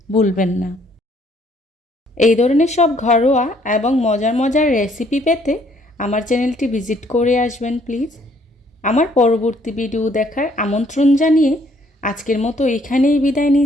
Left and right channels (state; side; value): normal; both; correlation 0.64